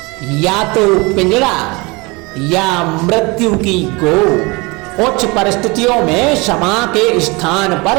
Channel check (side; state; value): left; quieter; 26.0 dB